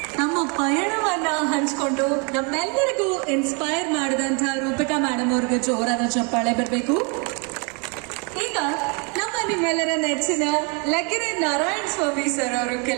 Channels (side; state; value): left; quieter; 34.8 dB